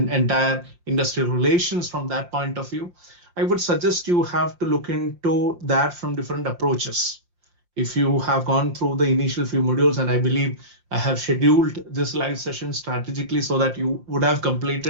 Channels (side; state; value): left; late; 5.7 ms